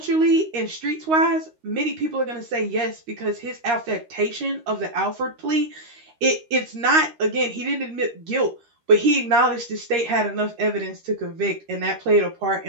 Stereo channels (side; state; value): left; late; 13 ms